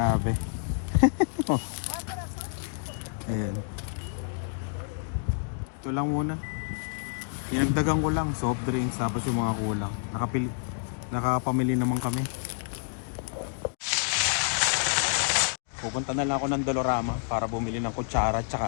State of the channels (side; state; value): right; silent; digital silence